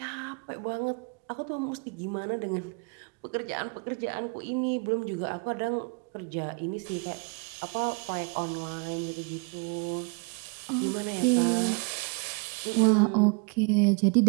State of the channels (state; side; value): quieter; left; 33.5 dB